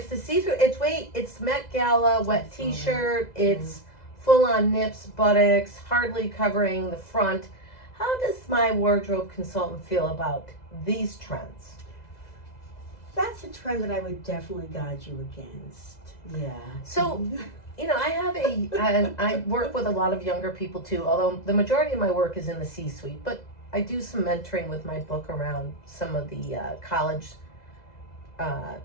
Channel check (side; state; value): right; late; 2.0 ms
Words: the see-through, it's Met Gala, wet t-shirt, it's full-on nips, buttocks, hardly covering the front. How does my wardrobe consultant feel about these trends? That's a trend that I would definitely guide you against. Yeah. So, I work with a lot of younger people too, although the majority of my work is in the C-suite, but I do some mentoring with my book around some of the college